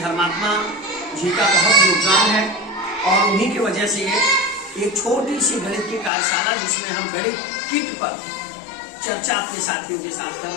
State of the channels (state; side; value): drops out; right; at 6.1 s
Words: जी का बहुत योगदान है और उन्हीं की वजह से ये एक छोटी सी गणित की कार्यशाला जिसमें हम गणित किट पर चर्चा अपने साथियों के साथ कर